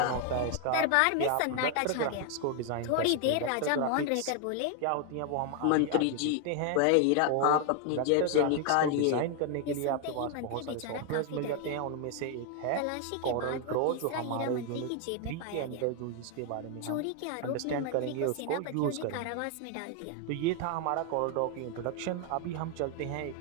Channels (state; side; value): different; both; correlation 0.00